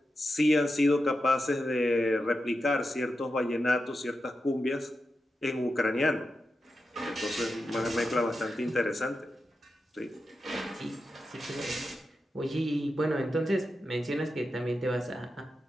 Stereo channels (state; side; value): normal; both; correlation 0.89